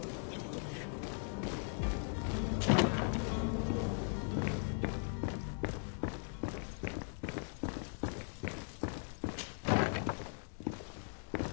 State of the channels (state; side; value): silent; right; 52 dB below the other